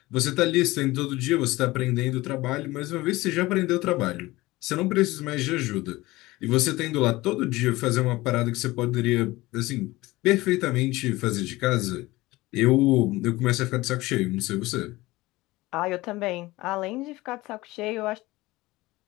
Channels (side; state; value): right; quieter; 19.7 dB